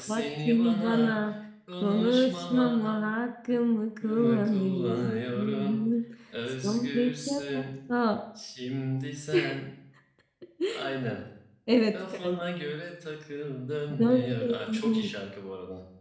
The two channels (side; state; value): both; identical; correlation 1.00